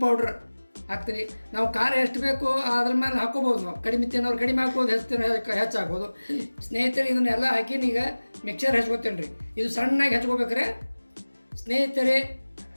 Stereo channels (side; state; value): both; inverted; correlation -1.00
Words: ಪೌಡ್ರ್ ಹಾಕ್ತೀನಿ. ನಾವು ಖಾರ ಎಷ್ಟು ಬೇಕು ಅದ್ರ ಮೇಲೆ ಹಾಕೋಬೋದು. ನಾವು ಕಡಿಮೆ ತಿನ್ನೋರು ಕಡಿಮೆ ಹಾಕ್ಬೋದು, ಹೆಚ್ಚು ಹಾಕ್ಬೋದು. ಸ್ನೇಹಿತರೆ, ಇದನ್ನೆಲ್ಲ ಹಾಕಿನ ಈಗ ಮಿಕ್ಸರ್ ಹಚ್ಕೋತೀನಿ ರೀ. ಇದು ಸಣ್ಣಾಗಿ ಹಚ್ಕೋಬೇಕ್ರೆ ಸ್ನೇಹಿತರೆ.